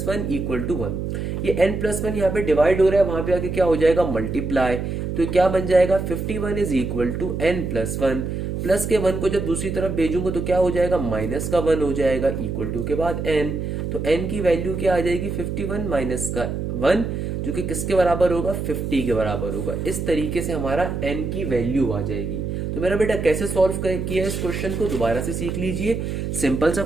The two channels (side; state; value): right; noise; hum, 3 dB below the sound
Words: 1 equal to 1। ये n प्लस 1 यहाँ पे डिवाइड हो रहा है, वहां पे आके क्या हो जाएगा, मल्टीप्लाई। तो क्या बन जाएगा, 51 is equal to n plus 1। Plus के 1 को जब दूसरी तरफ भेजूंगा तो क्या हो जाएगा, माइनस का 1 हो जाएगा, इक्वल टू के बाद n। तो n की वैल्यू क्या आ जाएगी, 51 माइनस का 1, जो कि किसके बराबर होगा, 50 के बराबर होगा। इस तरीके से हमारा n की वैल्यू आ जाएगी। तो मेरा बेटा कैसे सॉल्व किया इस क्वेश्चन को, दोबारा से सीख लीजिए। सिंपल सा